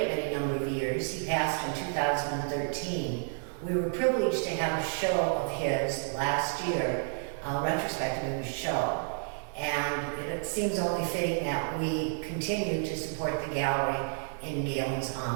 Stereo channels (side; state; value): left; silent; digital silence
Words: many number of years. He passed in 2013. We were privileged to have a show of his last year, a retrospective of his show. And it seems only fitting that we continue to support the gallery in Galen's